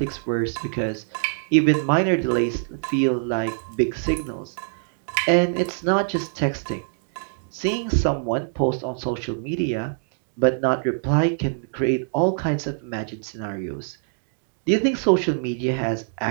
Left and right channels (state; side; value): silent; left; digital silence